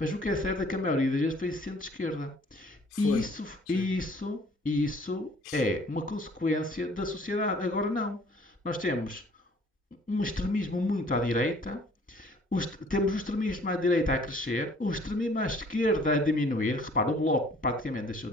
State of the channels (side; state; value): both; normal; correlation 0.56